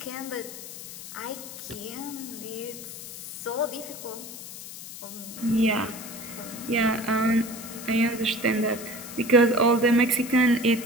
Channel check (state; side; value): noise; left; hiss, 12 dB below the sound